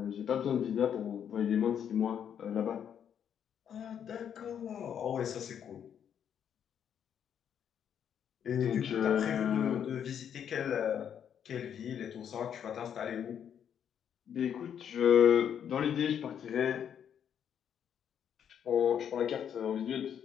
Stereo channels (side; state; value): right; quieter; 8.7 dB